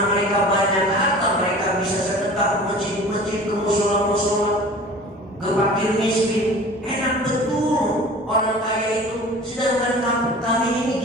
mereka banyak harta, mereka bisa sedekah ke masjid-masjid, ke mushola-mushola, ke fakir miskin. Enak betul orang kaya itu. Sedangkan kami ini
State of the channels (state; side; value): normal; both; correlation 0.41